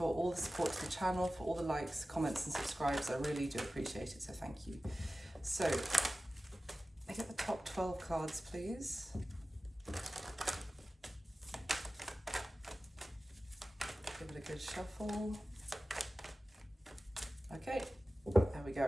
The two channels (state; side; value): normal; both; correlation 0.96